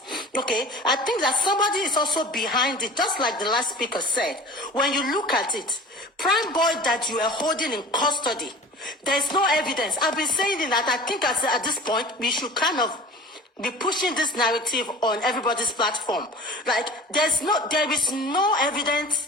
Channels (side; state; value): both; normal; correlation 0.40